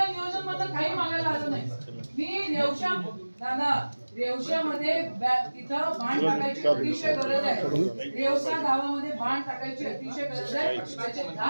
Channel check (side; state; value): both; inverted; correlation -1.00